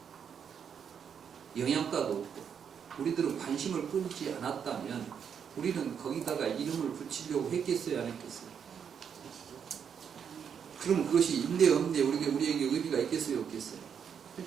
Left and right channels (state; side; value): quieter; left; 7.5 dB